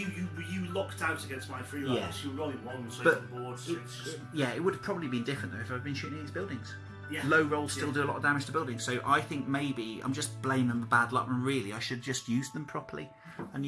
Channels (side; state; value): both; identical; correlation 1.00